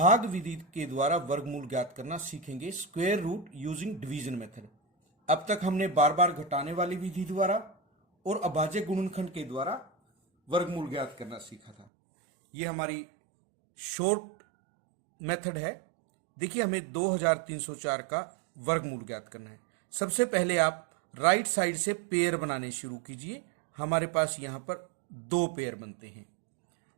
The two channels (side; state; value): left; drops out; at 11.9 s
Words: विधि के द्वारा वर्गमूल ज्ञात करना सीखेंगे, square root using division method. अब तक हमने बार बार घटाने वाली विधि द्वारा और अभाज्य गुणनखंड के द्वारा वर्गमूल ज्ञात करना सीखा था। ये हमारी शॉर्ट मेथड है। देखिए, हमें 2304 का वर्गमूल ज्ञात करना है। सबसे पहले आप राइट साइड से पेयर बनाने शुरू कीजिए। हमारे पास यहां पर 2 पेयर बनते हैं।